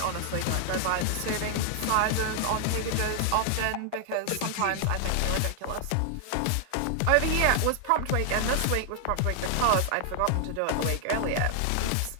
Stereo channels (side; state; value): both; different; correlation 0.00